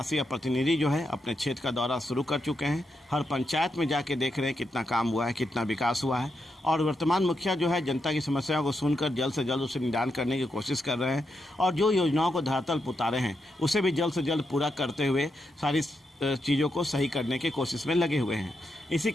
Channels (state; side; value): normal; both; correlation 0.84